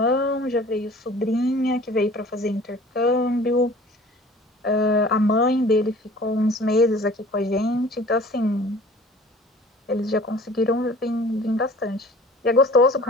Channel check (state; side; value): normal; both; correlation 0.47